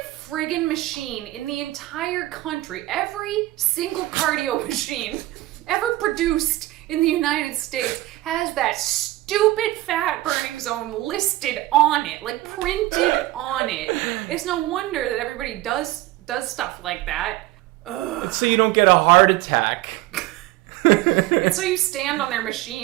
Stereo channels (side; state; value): left; quieter; 17.6 dB